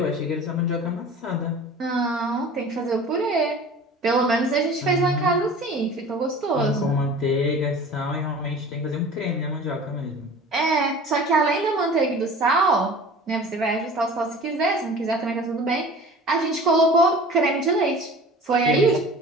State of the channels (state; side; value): normal; both; correlation 0.42